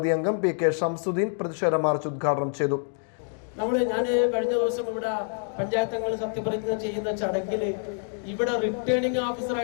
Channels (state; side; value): silent; right; 60 dB below the other